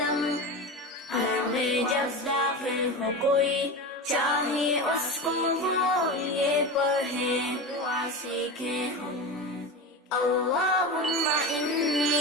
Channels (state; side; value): normal; both; correlation 0.24